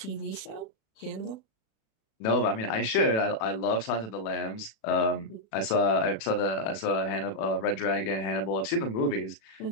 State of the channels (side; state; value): right; late; 36 ms